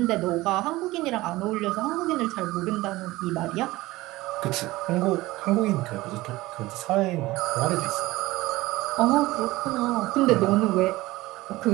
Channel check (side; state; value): left; quieter; 18.8 dB